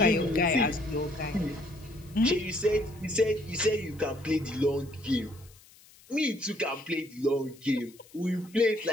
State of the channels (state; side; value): noise; left; hiss, 25 dB below the sound